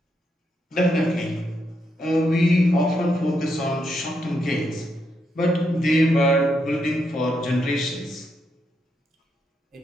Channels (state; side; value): normal; both; correlation 0.80